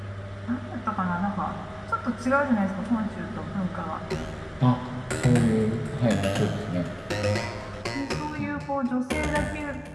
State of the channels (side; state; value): both; identical; correlation 1.00